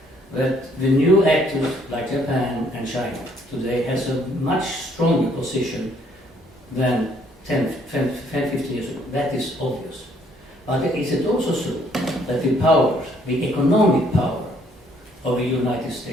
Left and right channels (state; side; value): normal; both; correlation 0.65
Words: that the new actors like Japan and China today has a much stronger position than 10, 15 years ago? That is obvious. But is it also true that the power, the economic power of the United